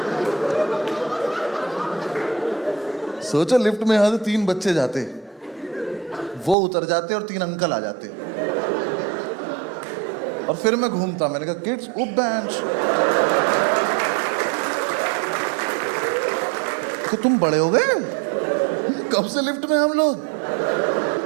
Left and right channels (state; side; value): drops out; left; at 6.6 s